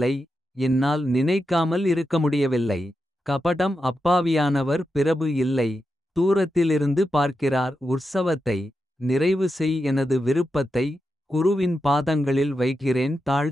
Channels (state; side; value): normal; both; correlation 0.88